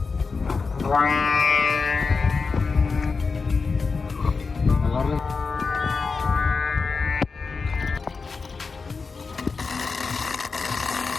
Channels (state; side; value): quieter; right; 4.6 dB